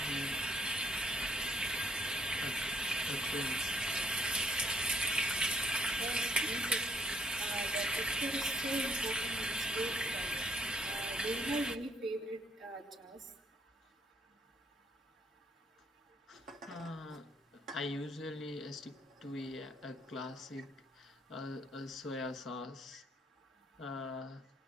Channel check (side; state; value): both; normal; correlation 0.67